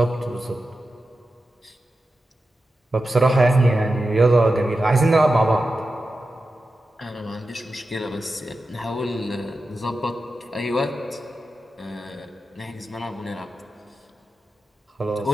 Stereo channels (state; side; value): normal; both; correlation 0.92